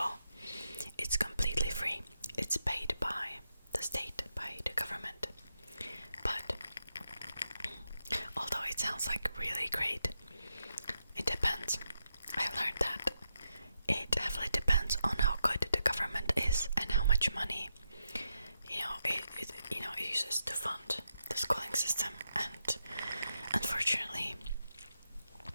it's completely free. It's paid by the state, by the government. But although it sounds like really great, it depends. I've learned that it heavily depends on how good the government is and how much money it uses to fund the schooling system. And unfortunately,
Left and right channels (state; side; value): inverted; both; correlation -0.84